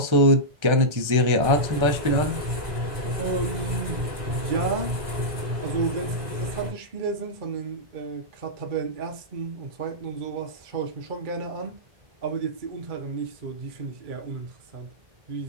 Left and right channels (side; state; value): left; late; 1.3 ms